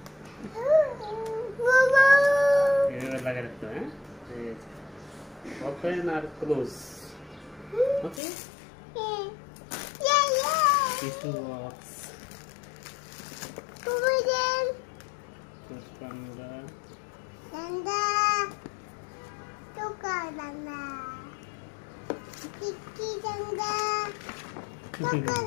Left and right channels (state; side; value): drops out; right; at 8.2 s